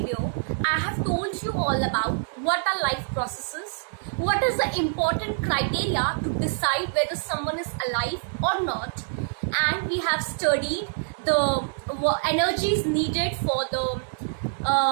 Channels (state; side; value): silent; left; digital silence